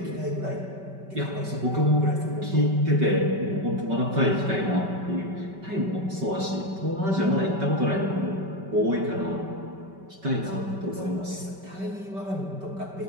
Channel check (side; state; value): left; late; 5.2 ms